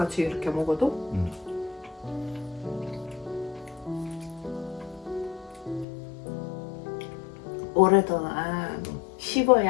이렇게 먹어도? 오랫동안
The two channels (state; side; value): drops out; right; at 5.9 s